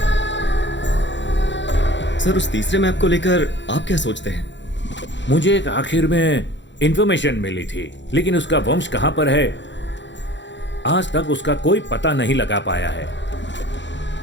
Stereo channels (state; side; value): late; right; 0.53 ms